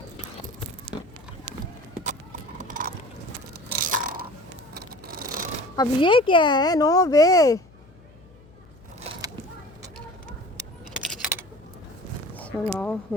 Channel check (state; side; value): noise; left; hum, 25 dB below the sound